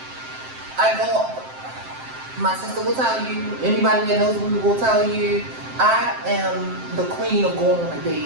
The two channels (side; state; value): left; late; 7.7 ms